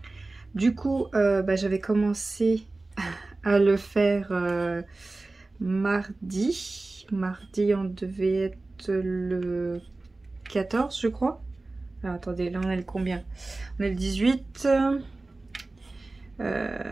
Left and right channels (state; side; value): quieter; left; 3.2 dB